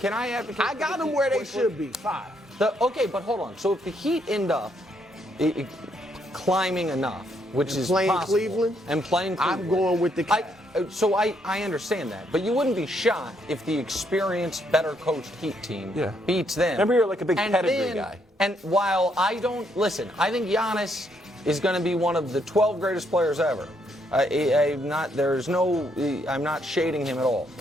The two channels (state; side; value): normal; both; correlation 0.73